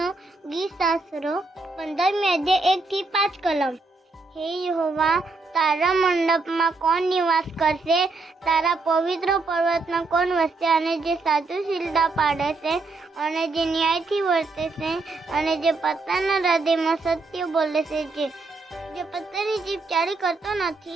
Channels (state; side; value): quieter; left; 3.7 dB